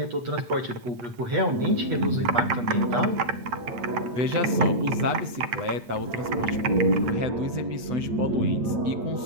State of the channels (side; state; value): left; late; 8.3 ms